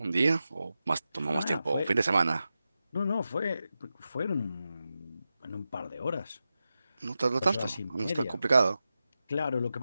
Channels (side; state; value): both; inverted; correlation -0.92